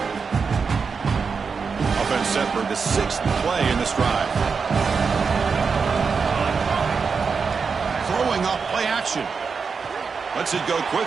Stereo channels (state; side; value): quieter; left; 5.4 dB